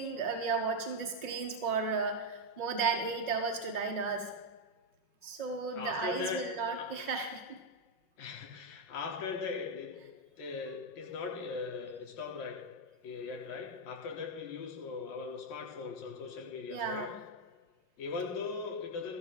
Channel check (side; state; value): right; late; 5.5 ms